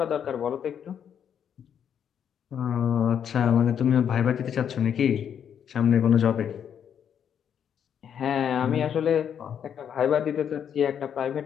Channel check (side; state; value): right; quieter; 8.5 dB